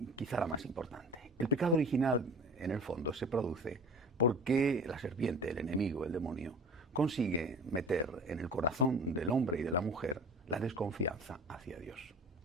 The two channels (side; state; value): both; normal; correlation 0.40